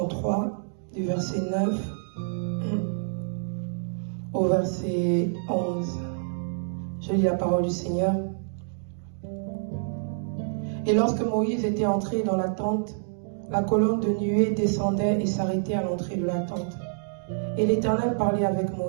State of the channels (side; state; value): left; silent; digital silence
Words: du verset 9 au verset 11. Je lis la parole du Seigneur. Et lorsque Moïse était entré dans la tente, la colonne de nuée descendait et s'arrêtait à l'entrée de la tente. Et l'Éternel parlait avec